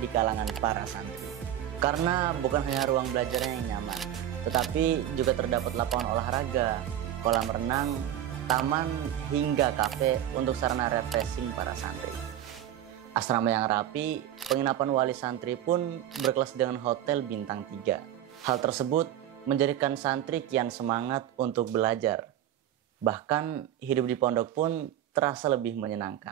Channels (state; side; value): quieter; left; 11.5 dB